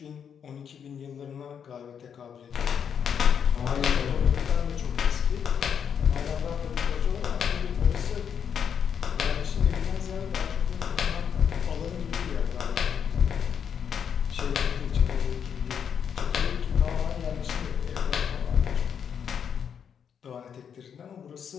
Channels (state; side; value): quieter; right; 7.7 dB